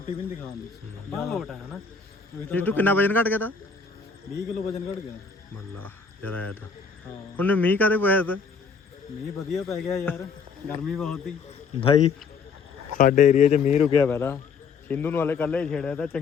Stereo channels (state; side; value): quieter; right; 5.3 dB